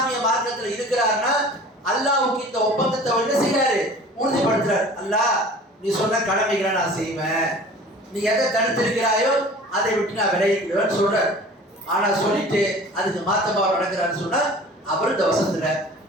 மார்க்கத்தில் இருக்கிறாருன்னா, அல்லாஹ்வுக்கு இந்த ஒப்பந்தத்தை என்ன செய்யறாரு? உறுதிப்படுத்துறாரு. அல்லாஹ் நீ சொன்ன கடமைகளை நான் செய்வேன், நீ எதை தடுத்திருக்கிறாயோ அதை விட்டு நான் விலகிக்கிறேன்னு சொல்றாரு. ஆனா சொல்லிட்டு அதுக்கு மாத்தமா நடக்கிறான்னு சொன்னா அவர் இந்த வசனத்துல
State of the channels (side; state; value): both; normal; correlation 0.44